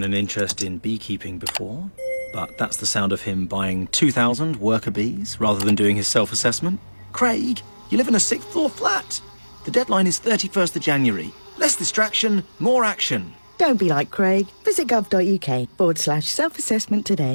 an interest in beekeeping before, but that's the sound of him buying 2,000 worker bees rather than doing his self-assessment. Craig, you live in a 6th floor flat. The deadline is 31st of January. Less distraction, more action. Don't be like Craig. Visit gov.uk/self-assessment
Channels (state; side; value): inverted; both; correlation -1.00